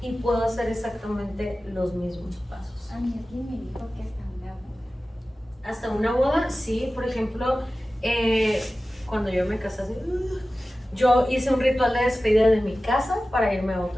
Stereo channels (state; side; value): normal; both; correlation 0.96